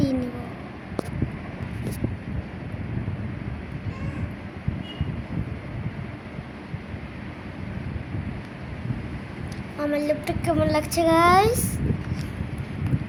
নিব। আমার লিপটা কেমন লাগছে গাইস?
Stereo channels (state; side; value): identical; both; correlation 1.00